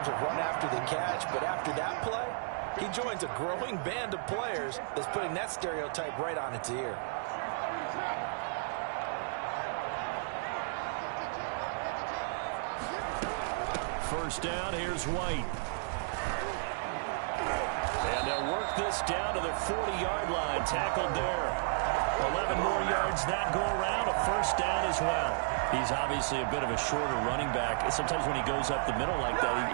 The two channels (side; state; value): left; silent; digital silence